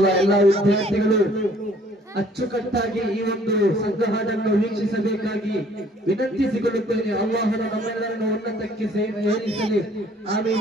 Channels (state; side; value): normal; both; correlation 0.58